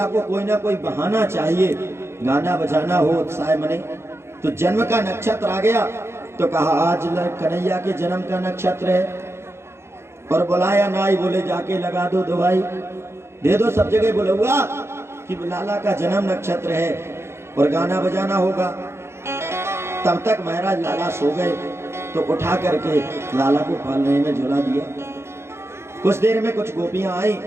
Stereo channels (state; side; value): late; left; 0.12 ms